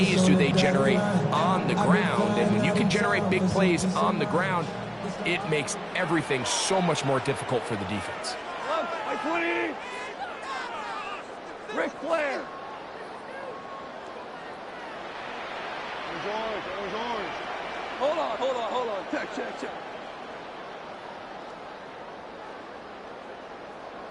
do they generate on the ground. And when you can generate big plays on the ground, it makes everything so much more difficult for the defense. By 20. Ric Flair. Orange. Hold on. Check.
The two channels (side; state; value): both; identical; correlation 1.00